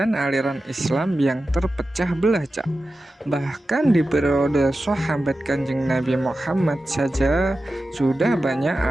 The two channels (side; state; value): both; normal; correlation 0.93